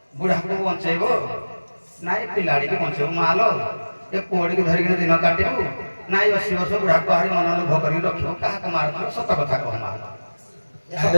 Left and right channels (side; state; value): both; inverted; correlation -1.00